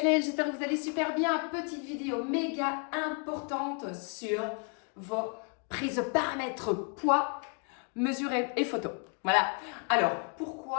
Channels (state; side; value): quieter; right; 38.4 dB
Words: j'espère que vous allez super bien. Petite vidéo méga importante sur vos prises de paramètres poids, mesure et photo. Voilà. Alors,